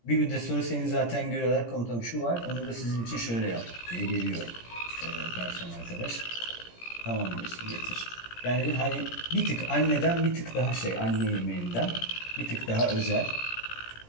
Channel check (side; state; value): right; late; 17 ms